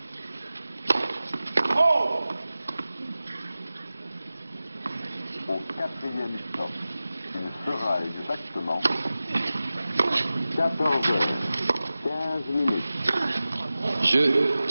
Au quatrième stop, il sera exactement 14 heures. 15 minutes. Jeu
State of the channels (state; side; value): inverted; both; correlation -0.96